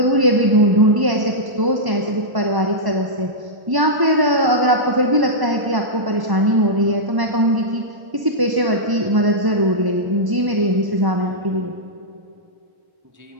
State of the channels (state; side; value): late; left; 1.0 ms